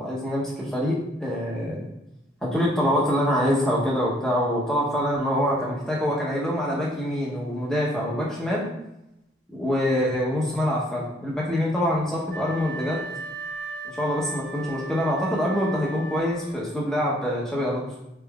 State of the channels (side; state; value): both; normal; correlation 0.63